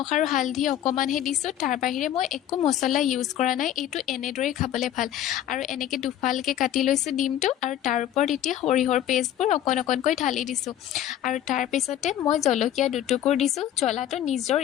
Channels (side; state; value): right; quieter; 11.5 dB